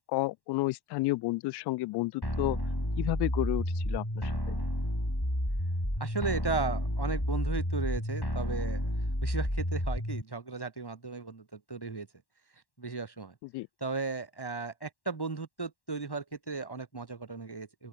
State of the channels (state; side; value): late; right; 1.1 ms